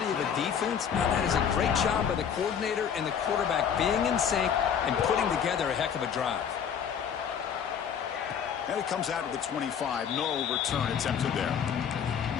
of a defense. Now, that is a great job by the coordinator and the quarterback being in sync and putting together a heck of a drive. And it comes out to the 25. No return attempted there.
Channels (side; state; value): right; quieter; 7.9 dB